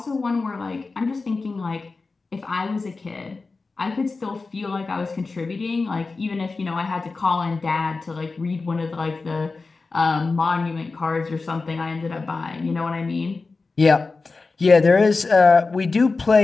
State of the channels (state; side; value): quieter; right; 3.9 dB